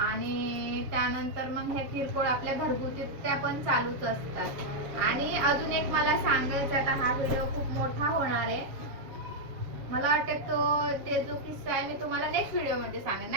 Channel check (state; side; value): late; left; 7.1 ms